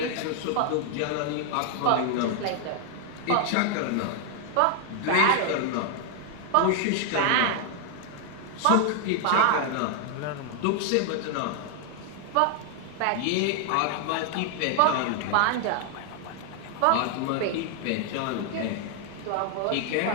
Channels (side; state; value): both; different; correlation 0.00